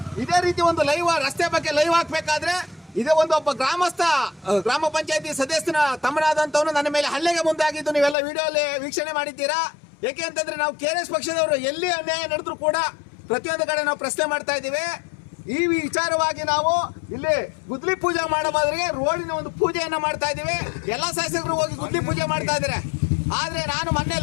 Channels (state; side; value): drops out; right; at 8.2 s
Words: ಇದೇ ರೀತಿ ಒಂದು ಲೈವ್ ರಸ್ತೆ ಬಗ್ಗೆ ಲೈವ್ ಹಾಕ್ಬೇಕಾದ್ರೆ ಇದೇ ಒಬ್ಬ ಗ್ರಾಮಸ್ಥ ಗ್ರಾಮ ಪಂಚಾಯತಿ ಸದಸ್ಯನ ತಮ್ಮನಾದಂತವನು ನನ್ನ ಮೇಲೆ ಹಲ್ಲೆಗೆ ಮುಂದಾಗಿದ್ದು ನೀವೆಲ್ಲ ವಿಡಿಯೋಲ್ಲಿ ವೀಕ್ಷಣೆ ಮಾಡಿದ್ದೀರಾ. ಯಾಕೆ ಅಂತಂದ್ರೆ ನಾವು KRS ಪಕ್ಷದವರು ಎಲ್ಲಿ ಅನ್ಯಾಯ ನಡೆದ್ರು ಕೂಡ ಪ್ರತಿಯೊಂದು ಕಡೆ ನಾವು ಪ್ರಶ್ನೆ ಮಾಡ್ತಾ ಇದ್ದೀವಿ. ಈ ವಿಚಾರವಾಗಿ ನಾವು ಇಲ್ಲಿ ಗುದ್ಲಿ ಪೂಜೆ ಮಾಡೋ ಬದಲಿಗೆ ರೋಡಿನ ಒಂದು ಪೂಜೆಯನ್ನ ಮಾಡ್ತಾ ಇದ್ದೀವಿ. ಎಲ್ಲಾ ಶಾಸಕರು ಹೋಗಿ ಗುದ್ಲಿ ಪೂಜೆ ಮಾಡ್ತಾ ಇದ್ದಾರೆ. ಆದ್ರೆ ನಾನು ಮೊನ್ನೆ